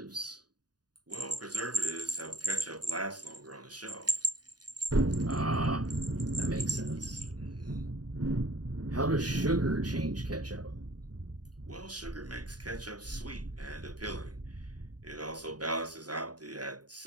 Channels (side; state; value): left; late; 0.69 ms